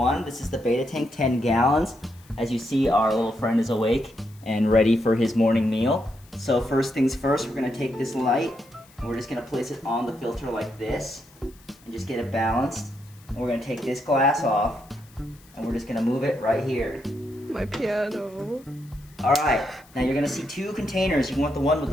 this is the beta tank, 10 gallons. As you see, our little friend is awake and ready for his morning meal. So first things first, we're going to take this light and we're just going to place it on the filter like this and just get it balanced. And we're going to take this glass off and we're just going to move it right here. My piano. Alright, now you're going to see 2 containers. You want the one with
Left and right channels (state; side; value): noise; left; hiss, 27 dB below the sound